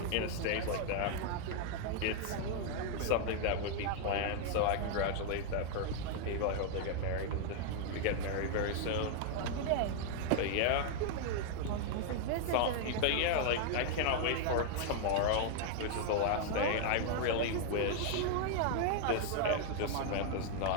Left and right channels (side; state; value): both; different; correlation 0.00